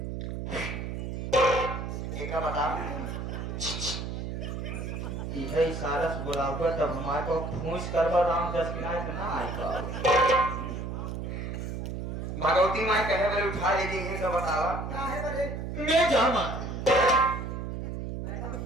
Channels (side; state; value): right; noise; hum, 5 dB below the sound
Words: एक बता इहे इशारा से बुलाऊंगा तब हमारे को फूंस करवा राम 10 किनारे से ना आएगा। भगवती मां कहे बोले उठा ले दी है तो बतावा क्या है बरे मैं जामा